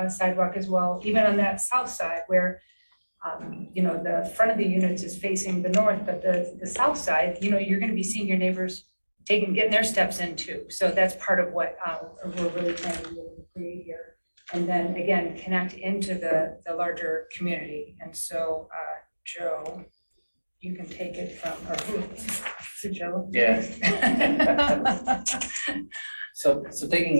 sidewalk as well, even on that south side where the front of the units is facing the north, but the south side, you're going to be seeing your neighbors getting their steps in too. So that's part of what we're really trying to create here. And then again, connect into the larger community. And so, Joe, you can take it from, or who? Is it Joe? Yeah. So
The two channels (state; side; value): inverted; both; correlation -1.00